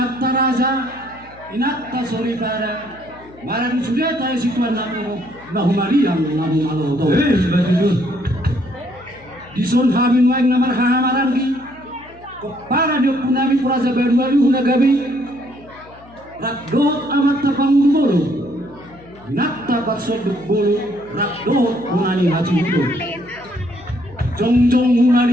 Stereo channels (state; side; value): noise; left; hum, 23 dB below the sound